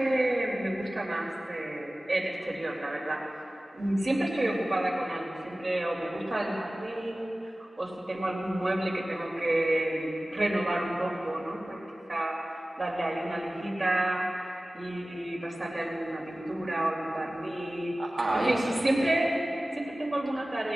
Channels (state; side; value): normal; both; correlation 0.97